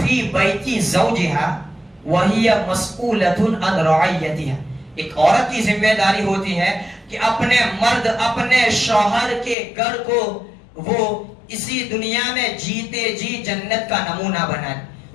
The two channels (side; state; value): right; drops out; at 9.6 s